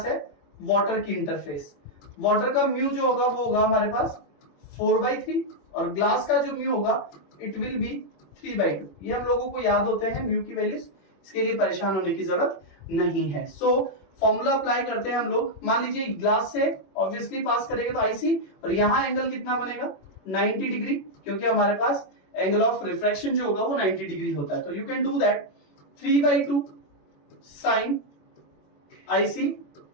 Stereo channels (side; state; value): right; late; 21 ms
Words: है वाटर की इंटरफेस. वाटर का म्यू जो होगा वो होगा हमारे पास 4/3 और ग्लास का जो म्यू होगा इट विल बी 3/2. ये हम लोगों को याद होते हैं म्यू की वैल्यूज. इसके लिए परेशान होने की जरूरत नहीं है. सो फॉर्मूला अप्लाई करते हैं हम लोग. मान लीजिए ग्लास से ऑब्वियसली पास करेगा तो आईसी, और यहां एंगल कितना बनेगा 90 डिग्री, क्योंकि हमारे पास एंगल ऑफ रिफ्रैक्शन जो होगा वो 90 डिग्री होता है. तो you can do that 3/2 sine IC